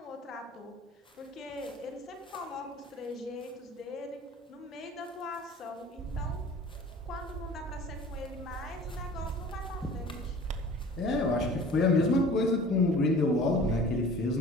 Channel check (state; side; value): normal; both; correlation 0.44